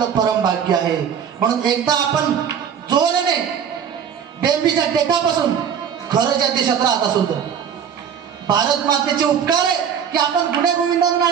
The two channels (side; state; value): left; quieter; 7.9 dB